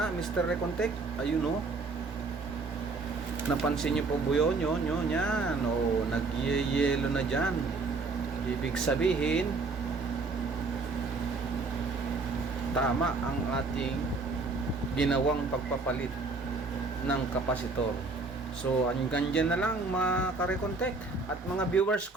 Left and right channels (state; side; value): quieter; left; 3.8 dB